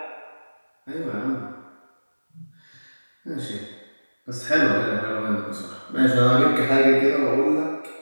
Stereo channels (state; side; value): inverted; both; correlation -1.00